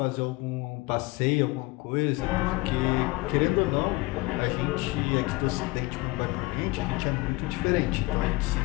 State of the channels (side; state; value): right; quieter; 22.5 dB